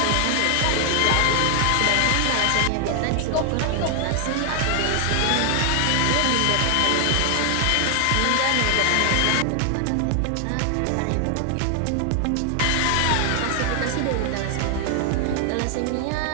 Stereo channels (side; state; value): both; different; correlation 0.00